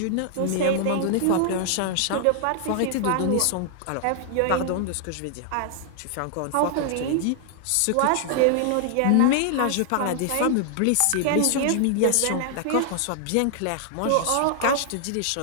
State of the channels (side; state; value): both; different; correlation -0.01